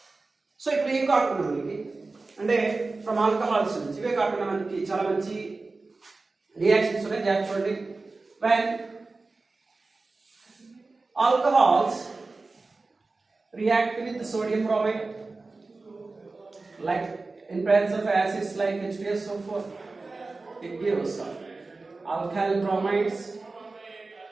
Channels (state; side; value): quieter; left; 3.6 dB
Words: So ఇప్పుడు ఏం కాకుండా మనకి అంటే ఫ్రమ్ ఆల్కహాల్స్ నుంచి ఇవే కాకుండా మనకి చాలా మంచి రియాక్షన్స్ ఉన్నాయి. చూడండి, when alcohols react with sodium bromide, like in presence of acids like H2SO4, it gives alkyl bromides.